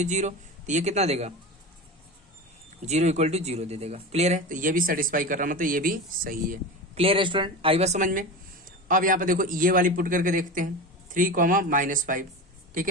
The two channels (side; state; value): both; normal; correlation 0.27